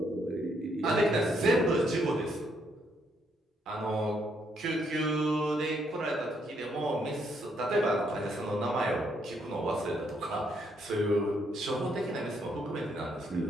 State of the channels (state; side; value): normal; both; correlation 0.73